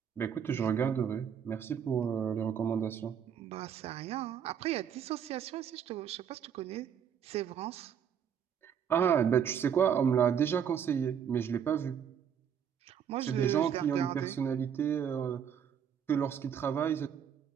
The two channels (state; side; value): quieter; left; 8.2 dB